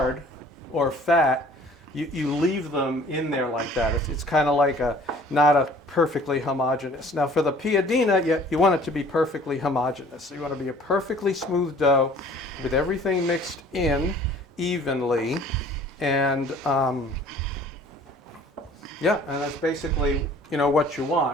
or fat, you leave them in there like that. It's kind of like not a perfectly homogeneous. Now for the Piadina, you want it to be perfectly homogeneous. So you want to be a perfectly smooth dough with everything mixed in evenly. And yeah, and that's basically, what you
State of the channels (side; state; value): both; normal; correlation 0.52